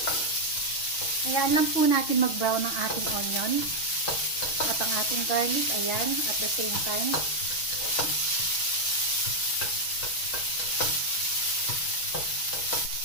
Ayan lang po natin mag-brown ang ating onion. At ang ating garlic, ayan, at the same time.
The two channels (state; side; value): late; right; 6.3 ms